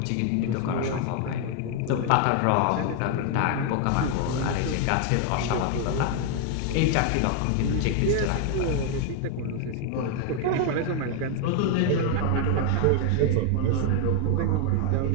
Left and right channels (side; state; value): both; different; correlation 0.00